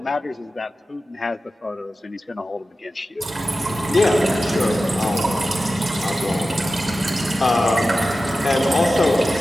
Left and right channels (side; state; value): both; normal; correlation 0.94